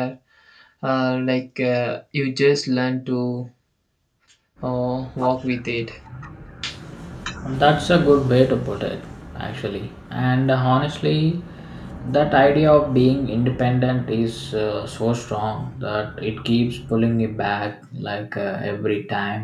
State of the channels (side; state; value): both; identical; correlation 1.00